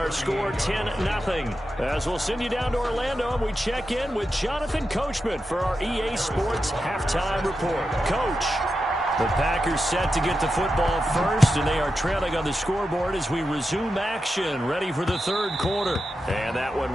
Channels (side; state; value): both; normal; correlation 0.89